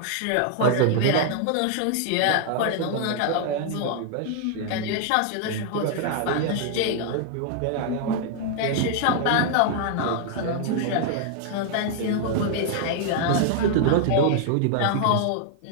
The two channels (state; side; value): different; both; correlation 0.00